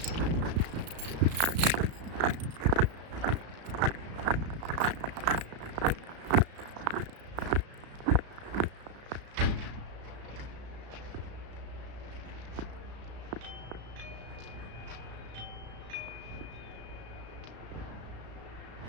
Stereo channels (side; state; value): left; late; 34 ms